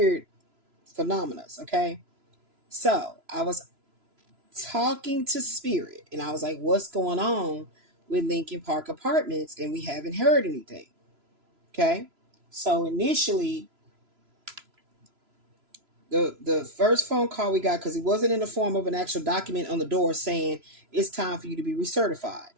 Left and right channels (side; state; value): left; late; 3.0 ms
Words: phenomena, okay? So, I was talking to Spirit and I was like, what's going on with Lincoln Park Apartments? And we haven't heard anything. Okay. So initially, the first phone call we got, because it wasn't in the form of an actual document on the door saying it's time for you to be recertified.